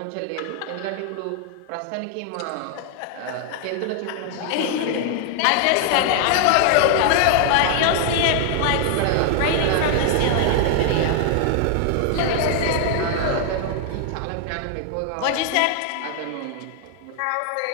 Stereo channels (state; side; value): different; both; correlation 0.00